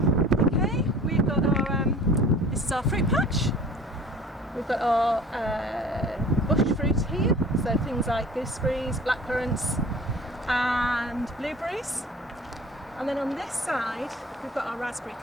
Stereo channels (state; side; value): normal; both; correlation 0.45